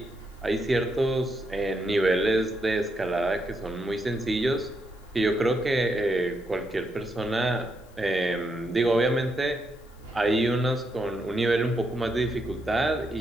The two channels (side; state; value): left; noise; hiss, 29 dB below the sound